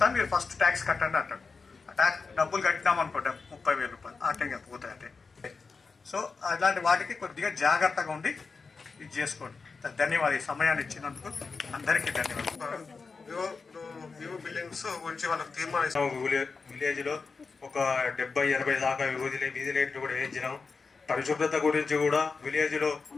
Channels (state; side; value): quieter; right; 4.6 dB